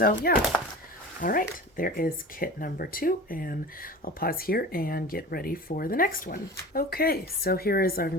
yeah. All right, there is kit number 2, and I'll pause here and get ready for the next one. Okay, so here is our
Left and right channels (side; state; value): both; normal; correlation 0.36